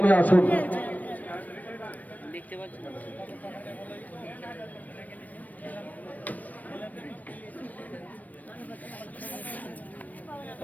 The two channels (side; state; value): right; late; 0.077 ms